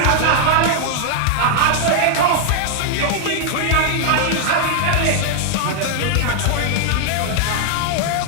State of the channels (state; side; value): different; both; correlation 0.00